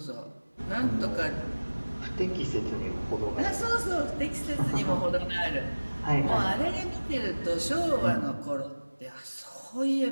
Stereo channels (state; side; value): inverted; both; correlation -1.00